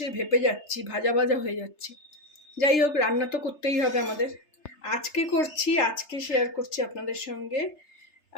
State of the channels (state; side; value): late; right; 3.3 ms